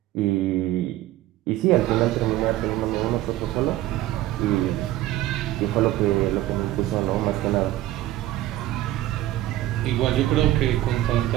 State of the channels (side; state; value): left; quieter; 15.0 dB